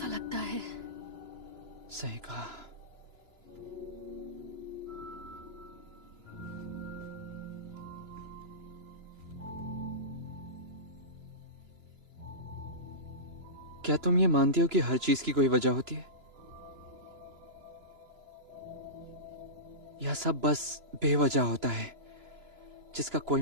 लगता है। सही कहा। क्या तुम ये मानती हो कि हर चीज की कोई वजह होती है, या सब बस बेवजह होता है जिसका कोई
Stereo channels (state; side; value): late; left; 2.9 ms